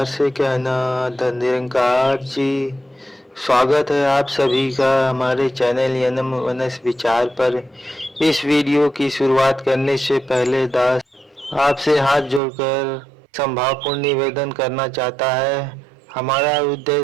से कहना धन जी। स्वागत है आप सभी का हमारे चैनल यनम वनस विचार पर। इस वीडियो की शुरुआत करने से पहले दास आपसे हाथ जोड़कर संभावपूर्ण निवेदन करना चाहता है। हमारा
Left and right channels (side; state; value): left; drops out; at 12.4 s